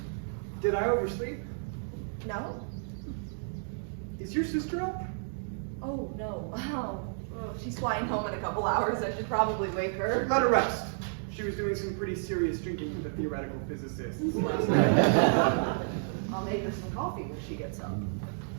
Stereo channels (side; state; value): left; silent; digital silence